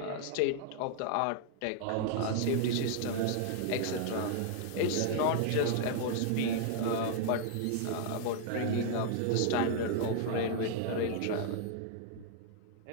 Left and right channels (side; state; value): both; different; correlation -0.01